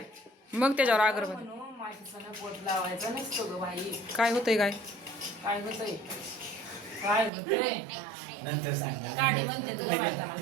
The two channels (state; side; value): drops out; left; at 7.3 s